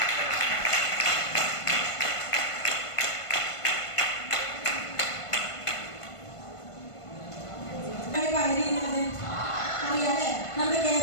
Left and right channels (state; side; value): late; right; 1.5 ms